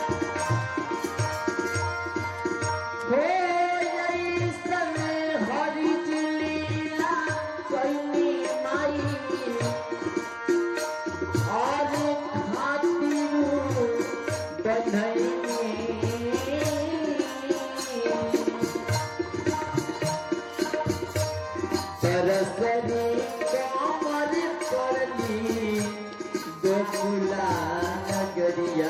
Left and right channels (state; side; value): identical; both; correlation 1.00